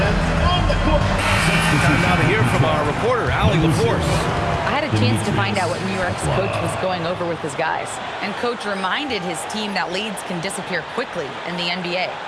Time now to hear from our reporter, Allie LaForce. I had a chance to find out what New York's coach was going over with his guys. And coach reminded his team that leads can disappear quickly in the NBA.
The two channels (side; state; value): both; identical; correlation 1.00